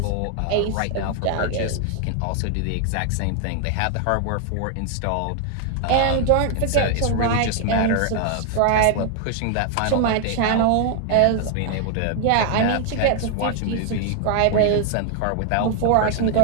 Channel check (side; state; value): both; different; correlation 0.00